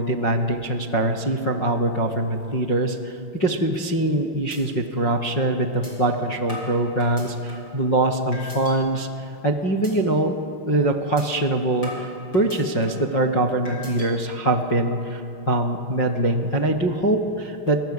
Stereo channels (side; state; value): right; late; 5.5 ms